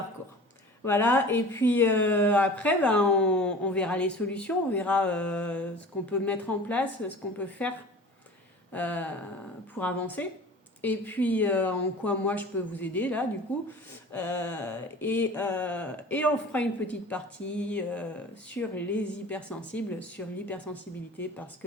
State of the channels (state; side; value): normal; both; correlation 0.40